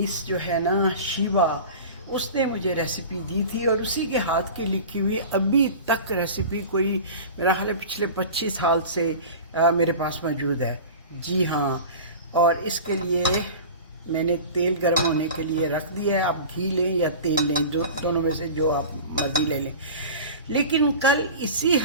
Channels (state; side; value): inverted; both; correlation -0.35